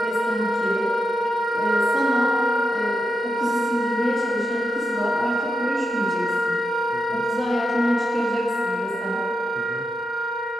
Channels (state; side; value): normal; both; correlation 0.86